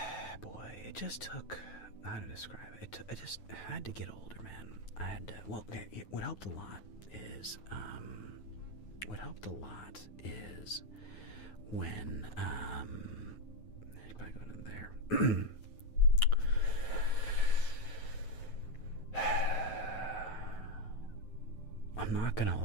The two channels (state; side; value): late; right; 9.3 ms